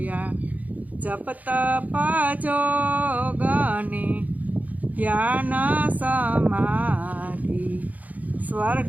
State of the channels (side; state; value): left; late; 0.077 ms